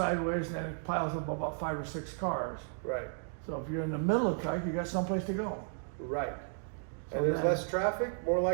and then it piles up about 5 or 6 cars. Right. So if you're in the middle of the track, you got someplace to go. Right. So And there's then- less traffic, more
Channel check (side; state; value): left; silent; digital silence